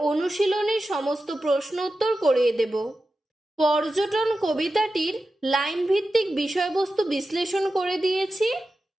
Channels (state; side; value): normal; both; correlation 0.92